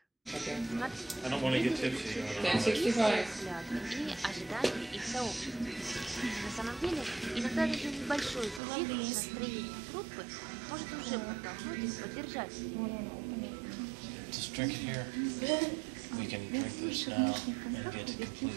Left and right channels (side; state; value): left; drops out; at 8.6 s